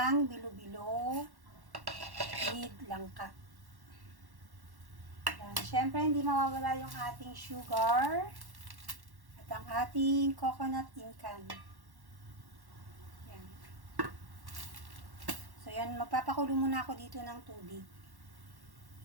bilo-bilo with langka. Yan. Siyempre, hindi mawawala yung ating sugar at ang ating coconut incan. Yan. So, yan. Magpapakulo muna ako dito ng tubig.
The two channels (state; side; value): late; left; 1.1 ms